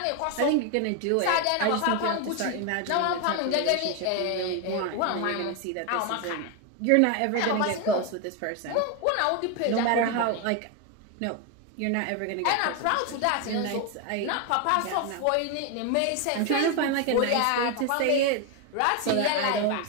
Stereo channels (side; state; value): both; different; correlation 0.01